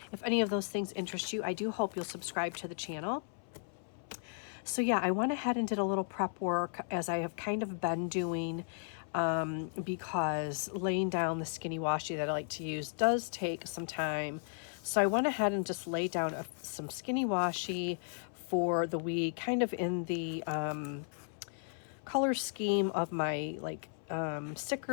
If any of those things interest you, I do hope you'll subscribe to the channel. So yeah, I went ahead and did a little prep work as I have kind of been doing because laying down the skinny washi that I like to use does take some time. So I went ahead and just laid down some skinny washi for the week, kind of in the color scheme of my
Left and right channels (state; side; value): silent; right; 54 dB below the other